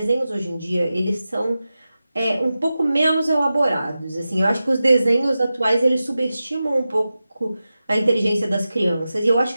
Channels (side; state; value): both; inverted; correlation -0.93